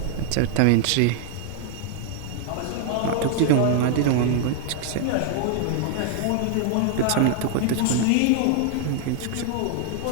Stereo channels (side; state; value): both; different; correlation 0.00